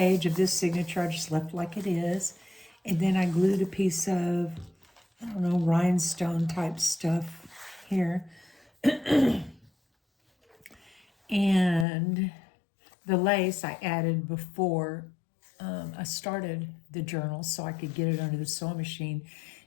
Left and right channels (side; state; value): right; drops out; at 11.9 s